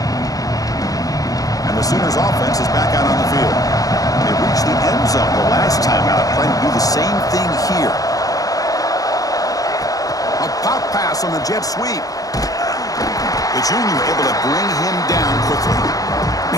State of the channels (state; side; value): late; right; 0.17 ms